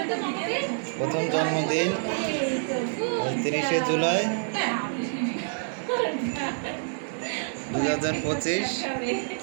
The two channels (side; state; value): left; silent; 60 dB below the other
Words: প্রথম জন্মদিন 30শে জুলাই 2025।